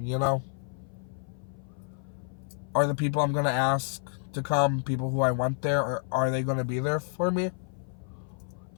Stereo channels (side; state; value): right; silent; 55 dB below the other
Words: you know? Are the people I'm going to ask to come people who I want there, or are they going to be there for me?